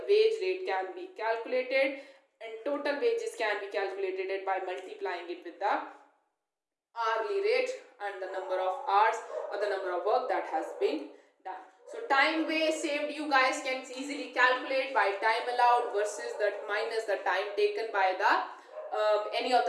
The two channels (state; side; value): identical; both; correlation 1.00